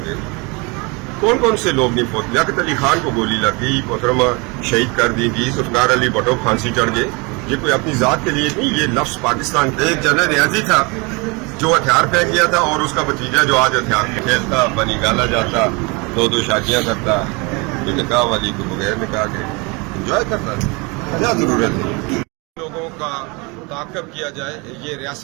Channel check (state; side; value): quieter; left; 28.5 dB